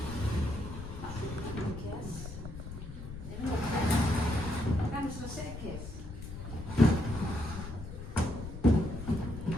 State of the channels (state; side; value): noise; left; rumble, 10 dB below the sound